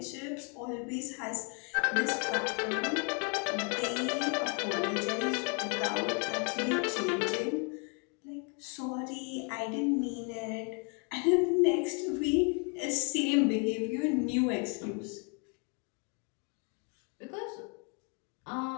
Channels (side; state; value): right; quieter; 37.0 dB